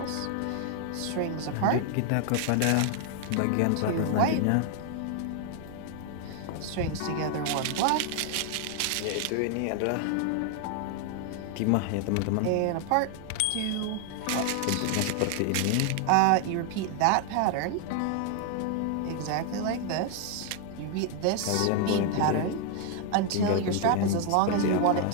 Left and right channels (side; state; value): both; different; correlation 0.00